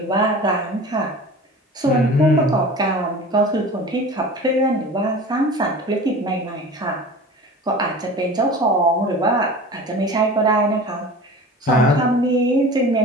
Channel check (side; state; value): both; normal; correlation 0.38